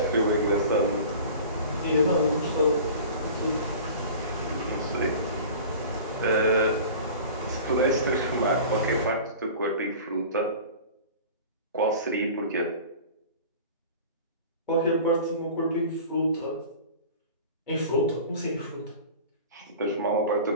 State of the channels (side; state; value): both; inverted; correlation -0.39